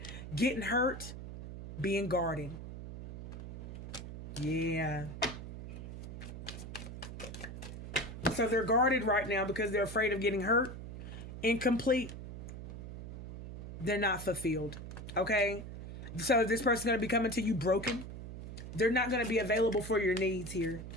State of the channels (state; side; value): noise; right; hum, 10 dB below the sound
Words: Getting hurt, being guarded. Yeah. So they're guarded right now because they're afraid of getting hurt, incomplete. They're not fulfilled. Okay? So this person's going to be coming to you broken. They're not going to be available for your needs here.